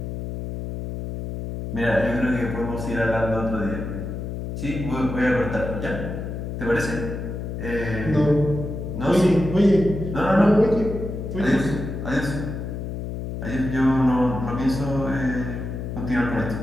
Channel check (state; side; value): noise; left; hum, 6 dB below the sound